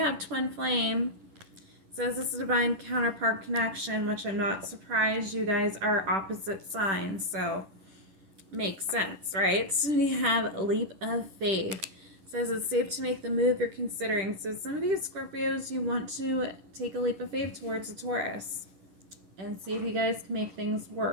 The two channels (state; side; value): late; left; 11 ms